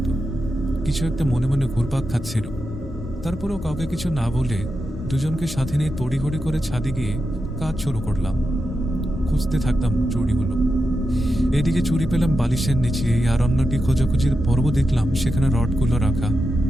কিছু একটা মনে মনে ঘুরপাক খাচ্ছিল। তারপরেও কাউকে কিছু না বলে দুজনকে সাথে নিয়ে তড়িঘড়ি করে ছাদে গিয়ে কাজ শুরু করলাম। খুঁজতে থাকতাম চুড়িগুলো। এদিকে চুড়ি পেলাম বালিশের নিচে, আর অন্যটি খোঁজাখুঁজির পর্ব দেখলাম সেখানে রডগুলো রাখা,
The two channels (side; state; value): both; normal; correlation 0.89